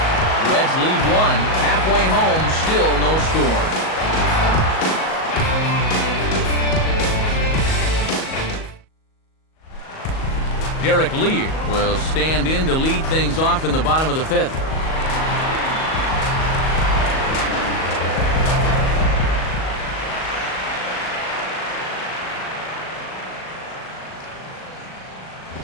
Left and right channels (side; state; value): right; late; 38 ms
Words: Reds leave one. Halfway home, still no score. Derek Lee will stand in to lead things off in the bottom of the fifth.